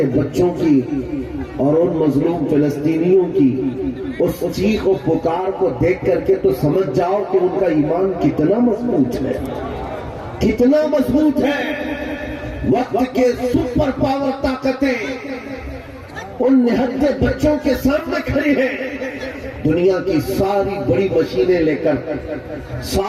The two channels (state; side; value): identical; both; correlation 1.00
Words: بچوں کی اور ان مظلوم فلسطینیوں کی اس چیخ و پکار کو دیکھ کر کے تو سمجھ جاؤ کہ ان کا ایمان کتنا مضبوط ہے، کتنا مضبوط ہے۔ وقت کے سپر پاور طاقتیں ان نہتے بچوں کے سامنے کھڑی ہیں۔ دنیا کی ساری بڑی مشینیں لے کر،